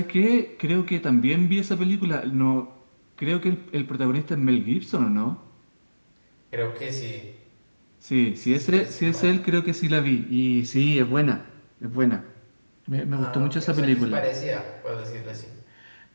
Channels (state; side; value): inverted; both; correlation -1.00